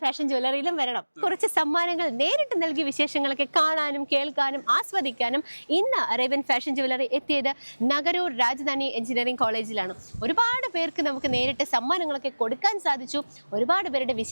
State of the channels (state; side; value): inverted; both; correlation -1.00